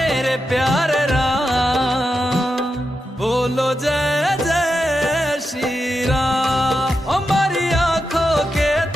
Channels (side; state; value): both; normal; correlation 0.87